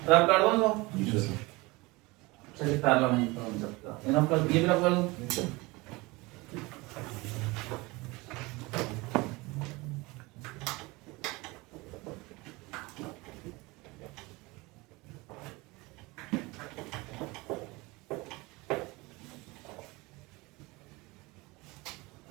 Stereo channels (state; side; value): quieter; left; 23.4 dB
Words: रब कर दो तो चलिए पैरेलल नहीं कर सकता, इनफ कर, ये भी रब कर दो।